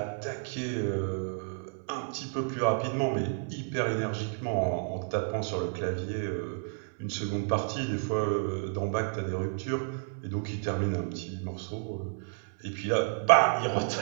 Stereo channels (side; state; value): left; silent; 57 dB below the other